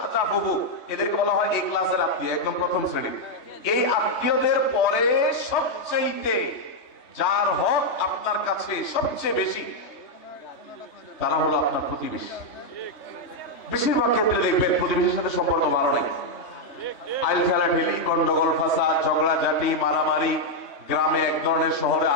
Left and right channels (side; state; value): right; late; 3.3 ms